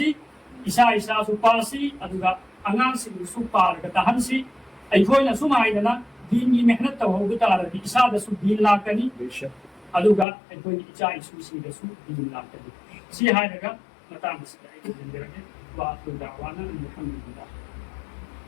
عیسیٰ سو پاسی ادوگا انگان سی سو پارگا تحنسی ایکوئی نا سو مائدنا دین کی محنت تو ہوگتا رہی عیسیٰ دا سو دین لاکنی ادوگا ایکوئی عیسیٰ سو سیدہ سو دین لاکنی سی ہائی رگا مطان سیدہ ایکوئی دن رگے وآخر دعوانا الحمد لله.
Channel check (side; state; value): right; drops out; at 10.2 s